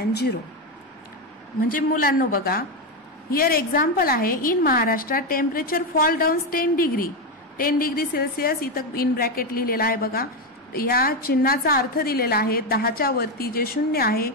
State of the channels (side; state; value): both; normal; correlation 0.09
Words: 0. म्हणजे मुलांनो बघा, here example आहे. In Maharashtra temperature fall down 10 degree Celsius. इथं in bracket लिहिलेला आहे बघा. या चिन्हाचा अर्थ दिलेला आहे. 10च्या वरती जे शून्य आहे,